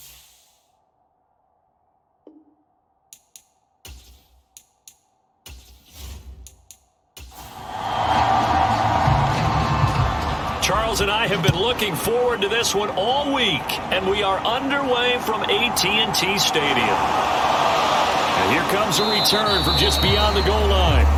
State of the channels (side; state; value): both; identical; correlation 1.00